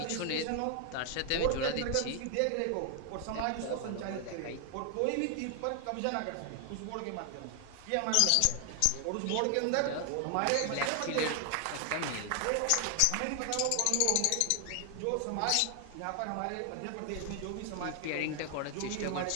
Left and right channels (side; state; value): both; different; correlation 0.00